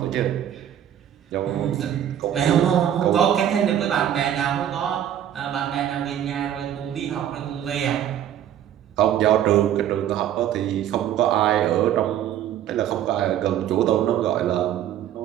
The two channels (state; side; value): quieter; left; 10.7 dB